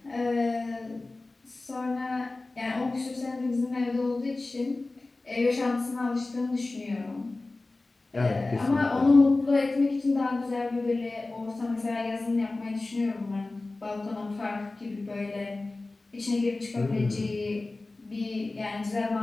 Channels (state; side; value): quieter; right; 3.2 dB